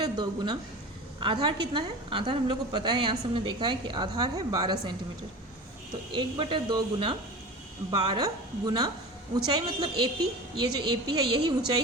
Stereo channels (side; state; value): both; normal; correlation 0.33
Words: गुना आधार कितना है, आधार हम लोग को पता है, यहाँ से हमने देखा है कि आधार है 12 सेंटीमीटर। तो 1/2 गुना 12 गुना ऊंचाई मतलब AP, ये जो AP है यही ऊंचाई